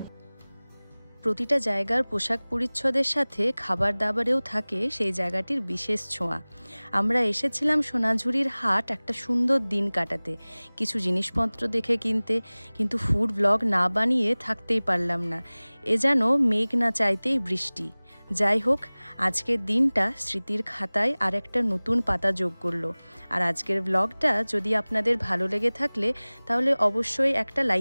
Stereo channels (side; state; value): both; inverted; correlation -1.00